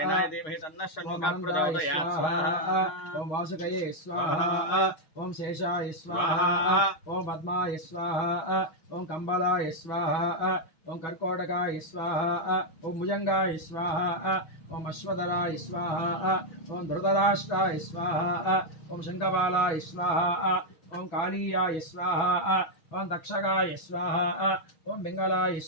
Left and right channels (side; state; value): right; late; 6.4 ms